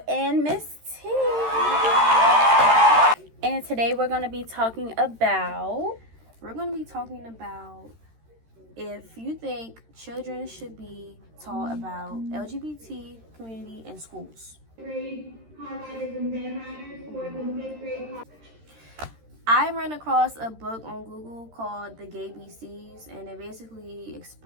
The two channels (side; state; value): left; late; 13 ms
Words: and Miss T. And today we're going to be talking about if you think children should be taught about LGBT community in schools. I ran across a book on Google called The Gay BCs, and it basically